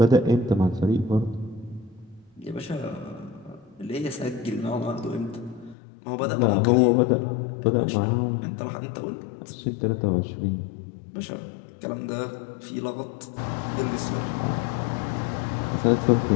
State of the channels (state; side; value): drops out; right; at 5.8 s